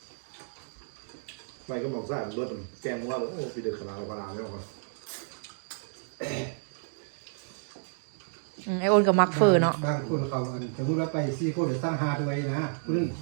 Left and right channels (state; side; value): silent; left; digital silence